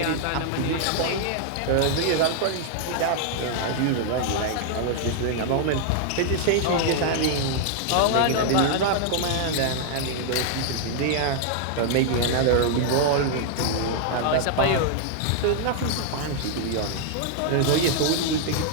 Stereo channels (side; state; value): both; different; correlation -0.01